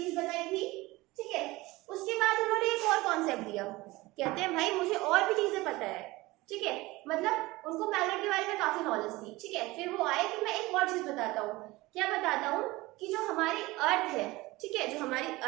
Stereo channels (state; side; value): quieter; left; 20.4 dB